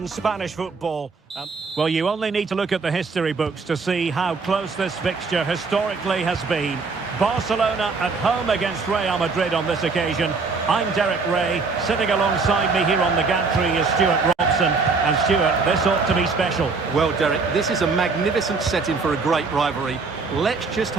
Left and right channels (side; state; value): left; quieter; 4.4 dB